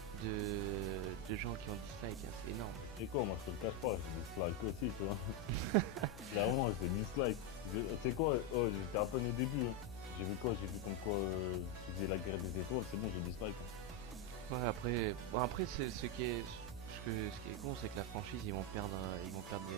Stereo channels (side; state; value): left; noise; hum, 15 dB below the sound